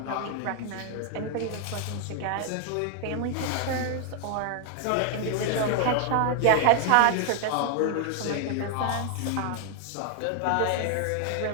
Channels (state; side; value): different; both; correlation 0.00